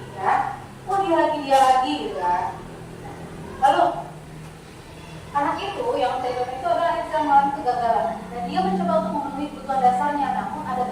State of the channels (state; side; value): identical; both; correlation 1.00